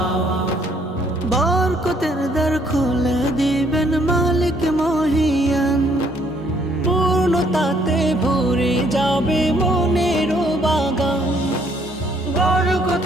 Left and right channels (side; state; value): both; normal; correlation 0.66